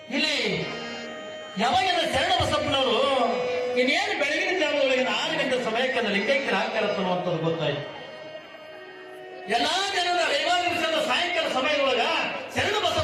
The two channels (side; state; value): both; identical; correlation 1.00